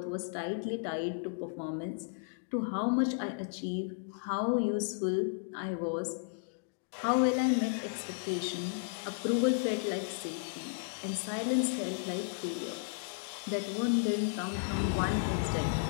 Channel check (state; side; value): silent; right; digital silence